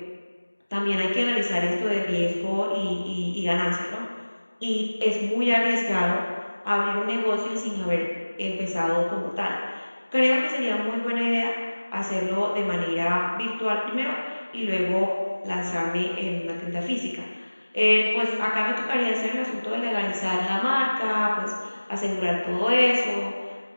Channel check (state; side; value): inverted; both; correlation -1.00